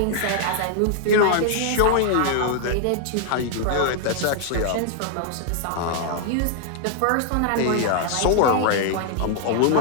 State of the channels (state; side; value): different; both; correlation 0.00